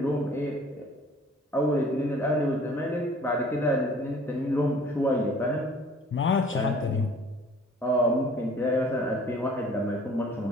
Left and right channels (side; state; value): both; normal; correlation 0.52